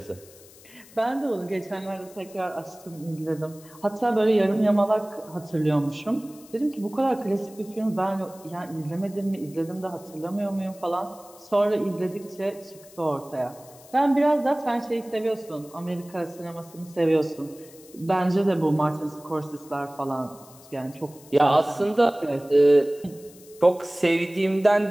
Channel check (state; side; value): noise; left; hiss, 23 dB below the sound